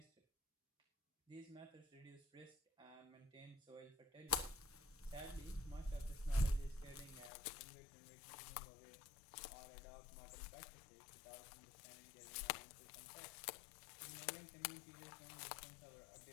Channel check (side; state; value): right; drops out; at 7.3 s